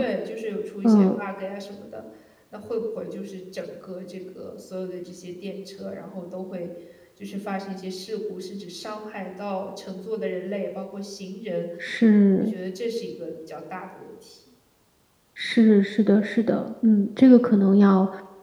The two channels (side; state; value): both; identical; correlation 1.00